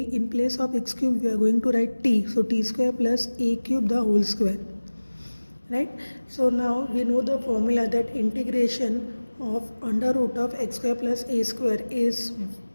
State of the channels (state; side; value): inverted; both; correlation -1.00